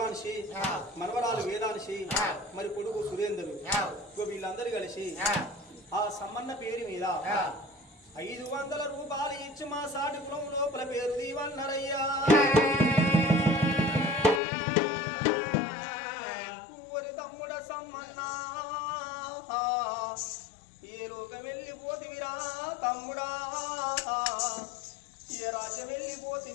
మనవరాలు వేదాంశి, మరి కొడుకు సురేంద్రుడు, వీళ్ళందరూ కలిసి ఆ సమ్మన్న పేరు మీద 500 రూపాయలు ఇచ్చి మా సాటి కులం లోపల పేరు దీవన్నరయ్యా. తమ్ముడ సమ్మన్న ఏ లోకం వెళ్ళిపోతివిరా తమ్ముడా, ఏ రాజ్యం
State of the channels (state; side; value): drops out; right; at 14.4 s